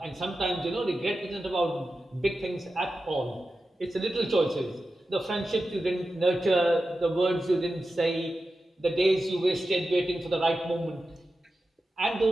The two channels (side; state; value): both; normal; correlation 0.92